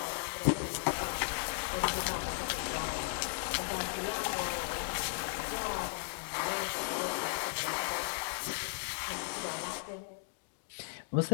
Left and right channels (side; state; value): right; silent; digital silence